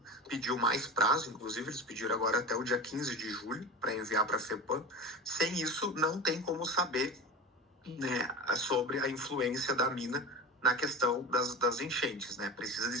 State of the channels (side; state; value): both; normal; correlation 0.29